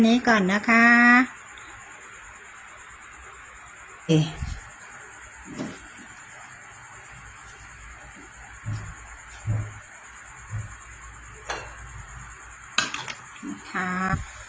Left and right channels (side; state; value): both; identical; correlation 1.00